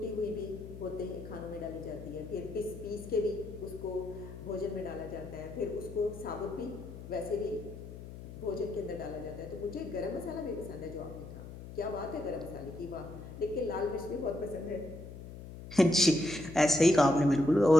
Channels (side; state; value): left; noise; hum, 13 dB below the sound